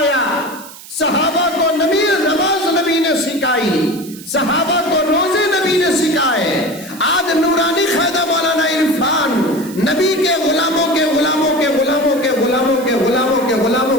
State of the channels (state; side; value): noise; right; hiss, 17 dB below the sound